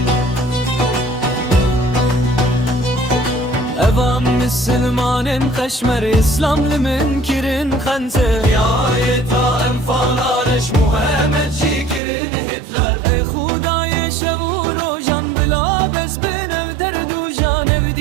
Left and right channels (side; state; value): left; drops out; at 12.0 s